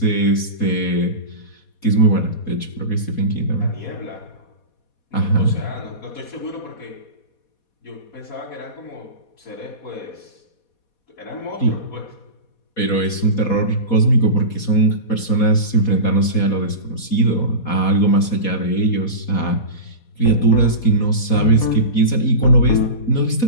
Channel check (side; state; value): right; late; 4.2 ms